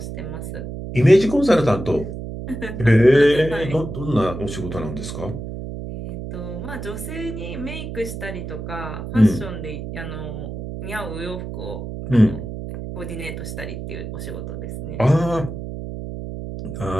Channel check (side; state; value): right; noise; hum, 8 dB below the sound